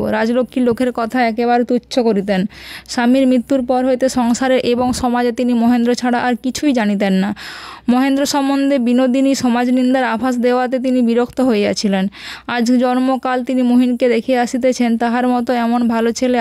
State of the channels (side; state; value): both; identical; correlation 1.00